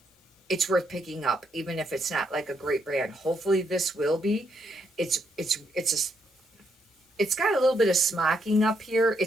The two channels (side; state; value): both; normal; correlation 0.77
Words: it's worth picking up, even if it's not a great brand. Hopefully this will be. It's got a little bit of smocking up here.